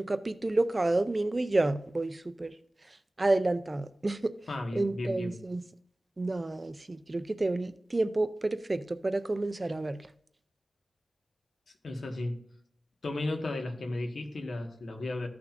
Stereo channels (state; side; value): normal; both; correlation 0.98